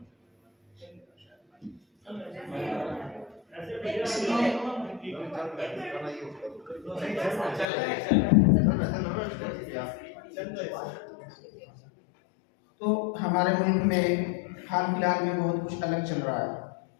तो हमारे मुल्क में हाल फिलहाल में बहुत कुछ अलग चल रहा है।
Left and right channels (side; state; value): right; drops out; at 7.7 s